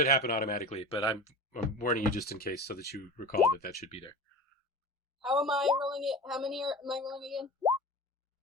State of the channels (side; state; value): both; normal; correlation 0.32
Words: happen automatically, but I'm warning you just in case, so that you recall that should be there. How am I rolling it? How many am I rolling again?